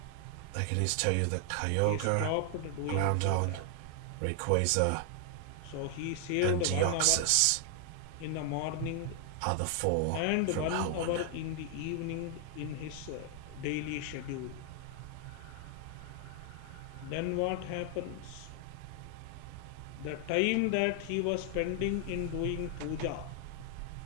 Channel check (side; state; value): both; different; correlation 0.00